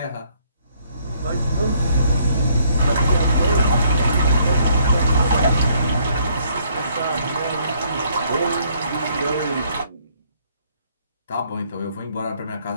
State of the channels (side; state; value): both; inverted; correlation -0.67